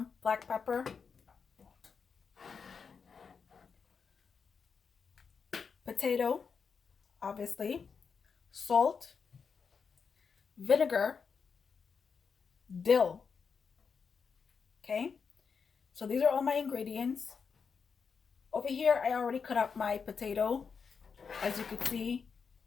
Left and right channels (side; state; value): right; quieter; 5.8 dB